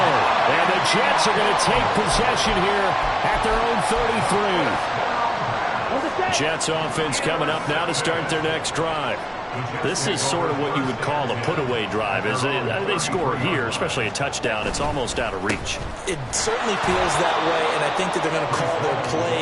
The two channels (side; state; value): both; identical; correlation 1.00